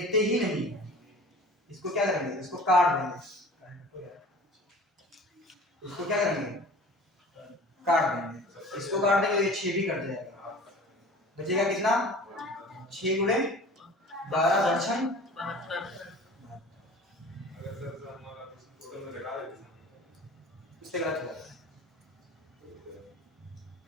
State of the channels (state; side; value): normal; both; correlation 0.42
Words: ही नहीं, इसको क्या करेंगे इसको काट देंगे, इसको क्या करेंगे काट देंगे, इसको काट देंगे तो ये 6 भी कट जाएगा, बचेगा कितना 6 गुणे 12 दर्शन, अगर सर हमारा टोटल में लगा देते इससे गलत हो जाता है,